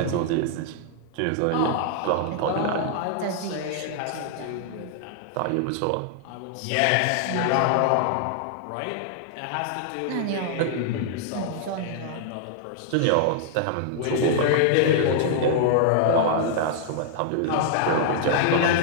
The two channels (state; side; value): different; both; correlation -0.01